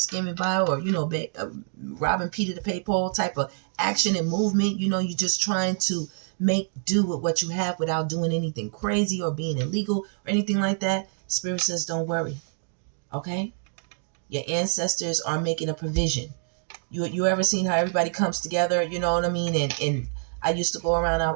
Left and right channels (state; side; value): silent; left; digital silence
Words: by or, robbing Peter to pay Paul type of action and movement, you're just trying to make do with what you have without doing anything crazy or being illegal or anything like that. Spirit says, don't worry. Okay? Your ancestors are making a provision. You ever seen how everybody comes together, you know what I mean? And I used to go around,